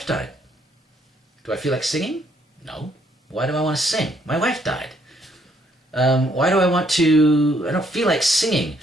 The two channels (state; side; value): normal; both; correlation 0.69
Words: died. Do I feel like singing? No. Why do I want to sing? My wife died. Why do I want to... I don't feel like singing.